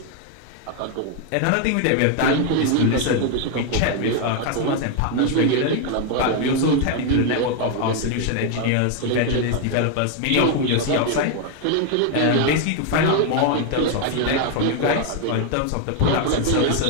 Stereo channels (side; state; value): both; different; correlation 0.01